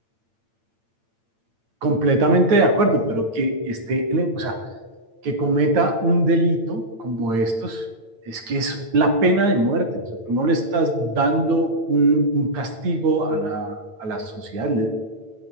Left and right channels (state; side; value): late; left; 8.9 ms